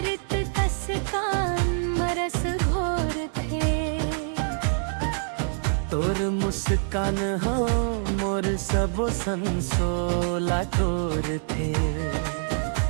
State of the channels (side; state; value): left; silent; 60 dB below the other